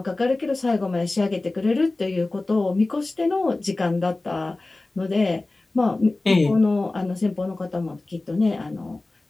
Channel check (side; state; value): right; quieter; 3.0 dB